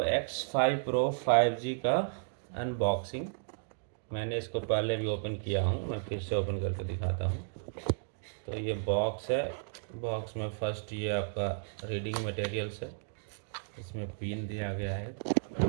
X5 Pro 5G का अनबॉक्सिंग। मैंने इसको पहले भी ओपन किया हूँ, मैं फिर से ओपन करके दिखाता हूँ। तो ये बॉक्स है। बॉक्स में फर्स्ट ये आपका रीडिंग मटेरियल्स है। इसमें पिन दिया गया है,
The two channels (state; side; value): silent; left; digital silence